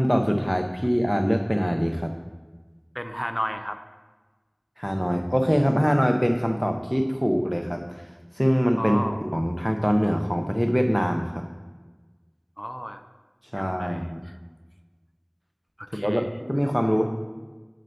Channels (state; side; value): identical; both; correlation 1.00